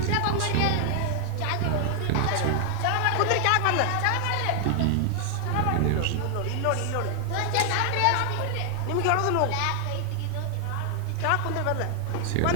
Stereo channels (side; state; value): both; different; correlation 0.00